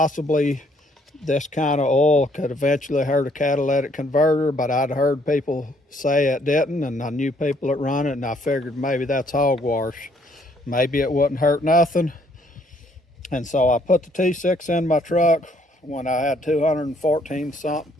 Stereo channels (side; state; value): both; normal; correlation 0.66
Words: this kind of oil could eventually hurt a catalytic converter, but I'd heard people say it didn't, and I knew people that run it, and I figured maybe that's hogwash. Maybe it wouldn't hurt nothing. And so I put the T6 in my truck when I had